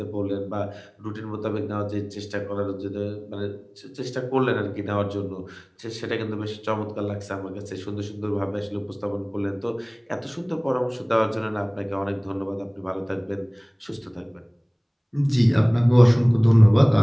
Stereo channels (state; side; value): identical; both; correlation 1.00